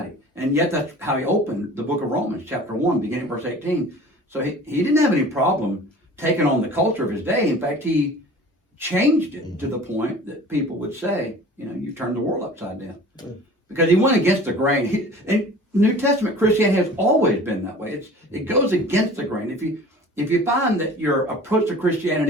And yet that's how he opened the book of Romans, chapter 1, beginning verse 18. So he didn't have any problem taking on the culture of his day. In fact, he changed it to the point that people would say, you turned the world upside down. Because he went against the grain. And New Testament Christianity has always been that way. It goes against the grain. If you find that your approach to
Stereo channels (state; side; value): normal; both; correlation 0.43